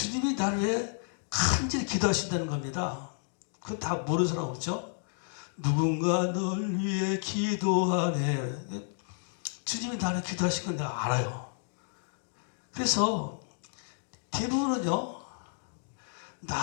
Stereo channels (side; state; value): right; silent; digital silence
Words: 나를 위해 간절히 기도하신다는 겁니다. 그건 다 모르는 사람 없죠? 누군가 널 위해 기도하네. 주님이 나를 기도하신 건 내가 알아요. 그래서 대부분은요